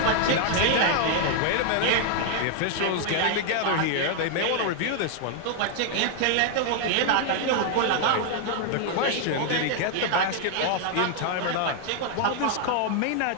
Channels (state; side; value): different; both; correlation 0.00